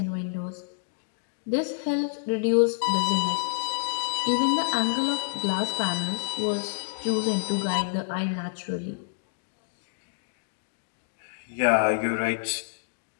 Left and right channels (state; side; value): silent; right; digital silence